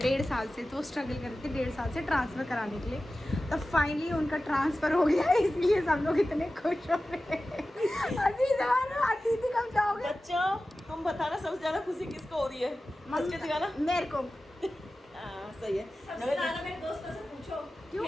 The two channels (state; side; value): normal; both; correlation 0.95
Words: साल से तो स्ट्रगल कर रही थी। 1.5 साल से ट्रांसफ़र कराने के लिए, तब फाइनली उनका ट्रांसफ़र हो गया। इसलिए सब लोग इतने खुश हो रहे हैं। आती थी कब जाओगे। बच्चों हम बताना सबसे ज्यादा खुशी किसको हो रही है। मस्के दिखाना मेरे को। सही है। सबसे ज्यादा मेरे दोस्तों से पूछो क्यों